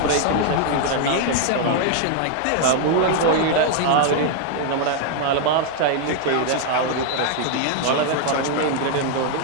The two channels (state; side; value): different; both; correlation 0.00